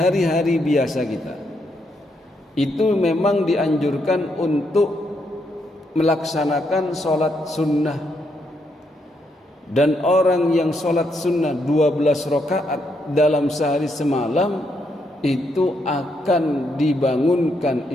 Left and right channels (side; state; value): both; normal; correlation 0.77